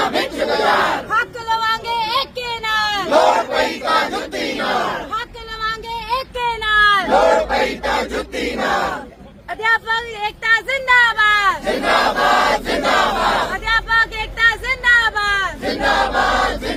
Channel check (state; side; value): identical; both; correlation 1.00